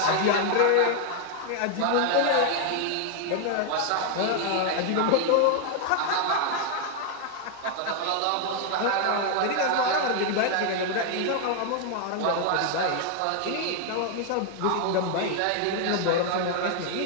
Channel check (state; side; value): different; both; correlation 0.00